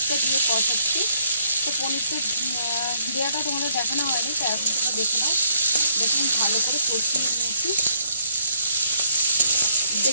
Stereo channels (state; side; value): inverted; both; correlation -0.68